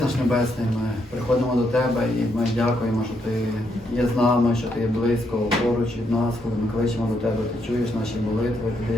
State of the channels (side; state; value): both; normal; correlation 0.77